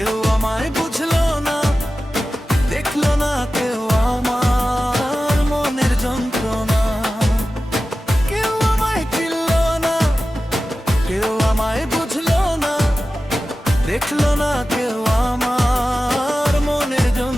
আমায় বুঝলো না, দেখলো না কেউ আমার মনের যন্ত্রণা। কেউ আমায় চিনলো না, কেউ আমায় বুঝলো না, দেখলো না কেউ আমার মনের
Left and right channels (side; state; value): both; normal; correlation 0.94